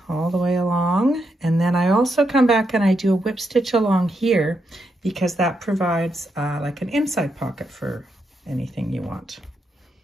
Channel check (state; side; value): normal; both; correlation 0.82